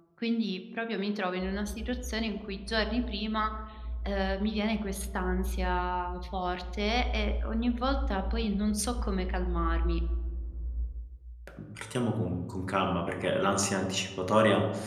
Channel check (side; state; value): both; identical; correlation 1.00